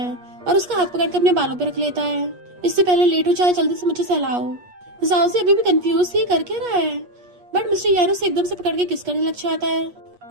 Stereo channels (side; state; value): left; late; 8.3 ms